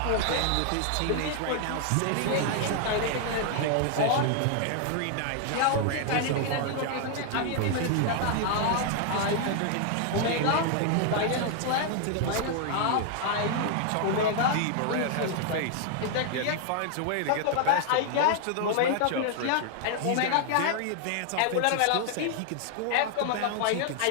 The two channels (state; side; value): different; both; correlation 0.00